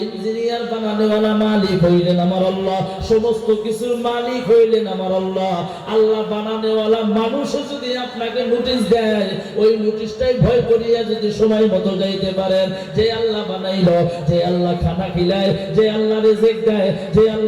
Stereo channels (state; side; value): identical; both; correlation 1.00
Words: ইঞ্জিনিয়ার বানানোওয়ালা মালিক হইলেন আমার আল্লাহ, সমস্ত কিছুর মালিক হইলেন আমার আল্লাহ। আল্লাহ বানানোওয়ালা মানুষও যদি আপনাকে নোটিশ দেয়, ওই নোটিশটাই ভয় করিয়া যদি সময় মতো যাইতে পারেন, যে আল্লাহ বানাইলো, যে আল্লাহ খানা খিলায়, যে আল্লাহ রিজিক দেয়, যে